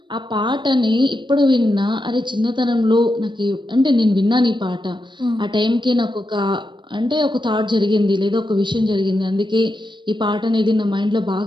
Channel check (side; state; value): left; late; 0.22 ms